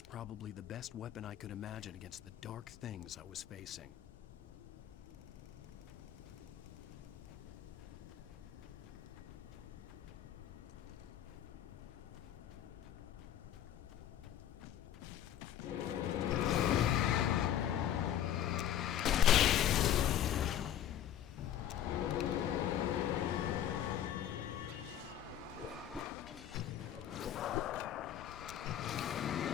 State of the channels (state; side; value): quieter; right; 11.0 dB